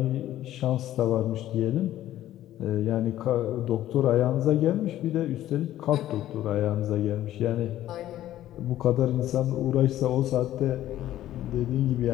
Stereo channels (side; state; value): right; quieter; 13.3 dB